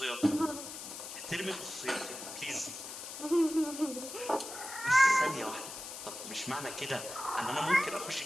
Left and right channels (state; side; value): noise; left; hiss, 9 dB below the sound